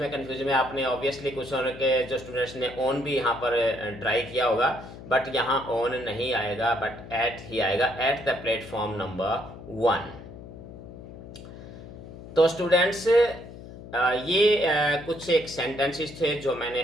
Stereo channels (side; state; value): left; noise; hum, 15 dB below the sound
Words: कंफ्यूज में, आपने ऑब्वियसली कुछ के जो स्टूडेंट्स ने ऑन भी यहाँ पर ट्राई किया होगा, बट यहाँ ऑन नहीं आएगा बट एट ही आएगा, एट द प्लेटफॉर्म नंबर 1। तो स्टूडेंट्स ये कुछ एक सेंटेंसेस थे जो मैंने